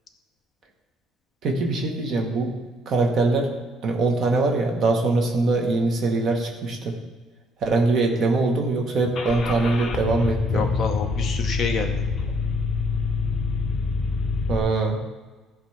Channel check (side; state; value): both; normal; correlation 0.68